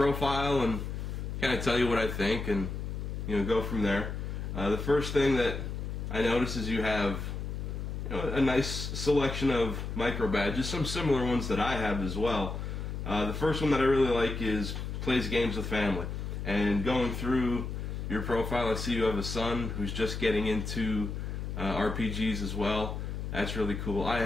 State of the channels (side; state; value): left; noise; hum, 5 dB below the sound